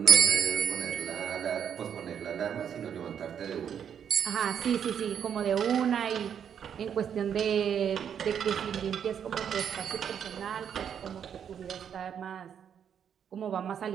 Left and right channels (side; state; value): left; quieter; 8.3 dB